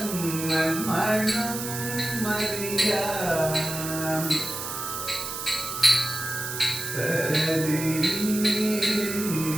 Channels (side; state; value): right; noise; hiss, 6 dB below the sound